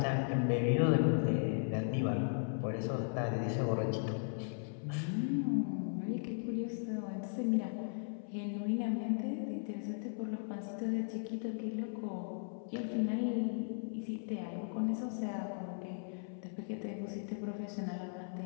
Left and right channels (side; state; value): right; silent; 53 dB below the other